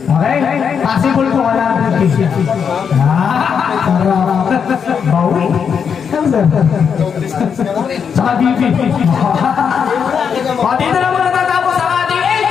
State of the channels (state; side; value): quieter; right; 6.9 dB